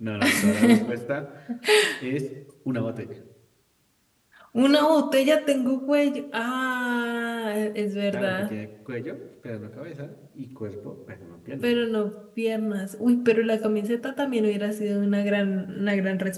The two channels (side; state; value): both; identical; correlation 1.00